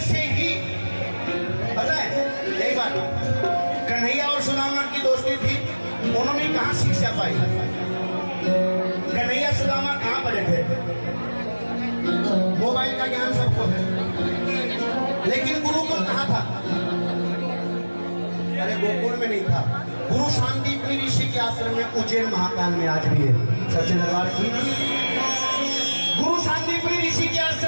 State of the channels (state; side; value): inverted; both; correlation -1.00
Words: से ही, पता है एक बार कन्हैया और सुदामा की दोस्ती थी, उन्होंने कहां शिक्षा पाई? कन्हैया सुदामा कहां पढ़े थे? मोबाइल का ज्ञान सबको है, लेकिन गुरुकुल कहां था? अरे गोकुल में नहीं था, गुरु शांतिपुरी ऋषि के आश्रम में उज्जैन महाकाल में आज भी है। सच्चे दरबार की गुरु शांतिपुरी ऋषि के